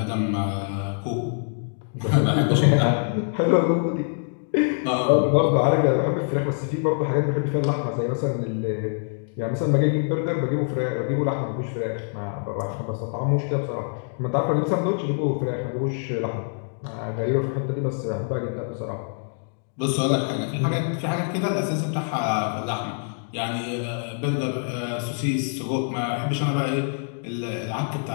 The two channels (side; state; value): right; silent; digital silence